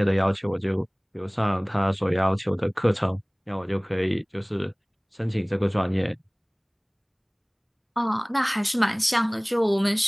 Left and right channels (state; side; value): identical; both; correlation 1.00